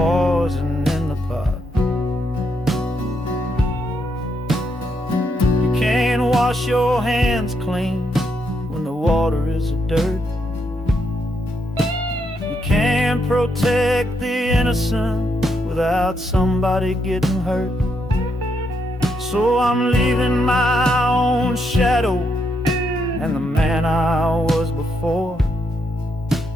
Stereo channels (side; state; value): both; normal; correlation 0.78